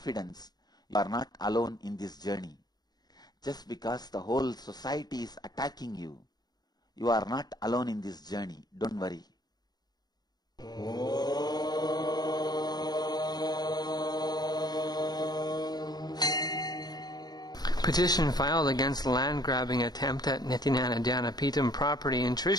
you are not alone in this journey. Just because the whole society is attacking you, you are not alone in this journey. Don't worry. Petition filed against the land-grabbing attempt at Nithyananda Dhyanapeetam property in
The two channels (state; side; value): late; right; 0.19 ms